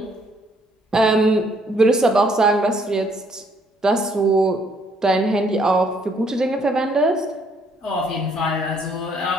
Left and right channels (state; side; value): normal; both; correlation 0.67